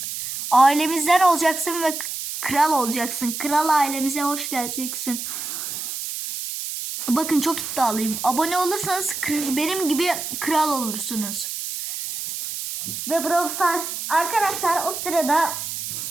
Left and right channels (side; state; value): right; noise; hiss, 6 dB below the sound